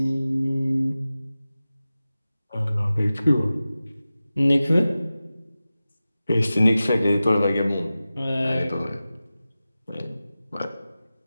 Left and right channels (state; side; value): inverted; both; correlation -0.95